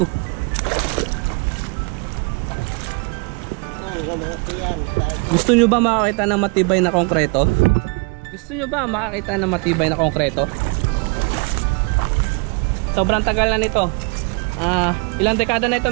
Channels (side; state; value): left; quieter; 32.8 dB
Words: Gusto nyo ba makakita ng matibay na konkreto? Gusto nyo ba makakita ng matibay na konkreto? Sobrang tagal na nito. Ilang dekada na